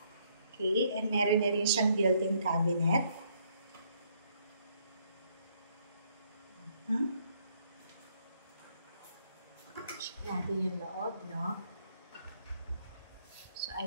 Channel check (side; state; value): both; inverted; correlation -0.70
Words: Okay, and meron na rin siyang built-in cabinet. Check natin yung loob, no? So,